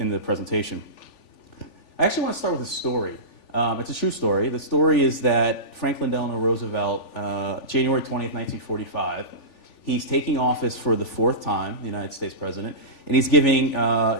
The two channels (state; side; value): late; right; 3.4 ms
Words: the presentation. I actually want to start with a story. It's a true story. The story is that Franklin Delano Roosevelt, January 20th, 1945, He's taking office for the 4th time, the United States president, and he's giving